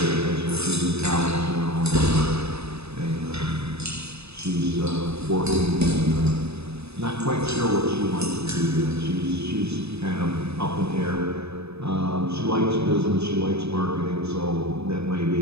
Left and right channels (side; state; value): left; late; 0.79 ms